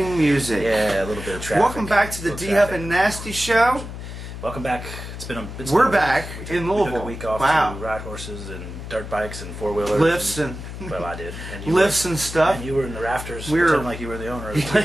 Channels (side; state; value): left; noise; hum, 10 dB below the sound